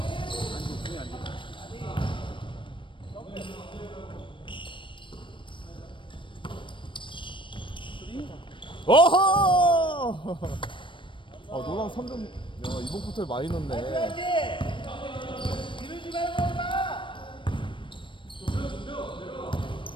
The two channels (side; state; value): right; late; 0.24 ms